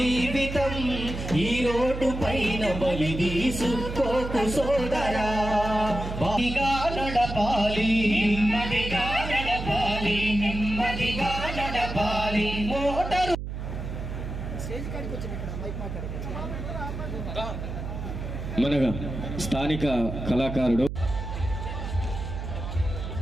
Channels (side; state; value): right; noise; hum, 6 dB below the sound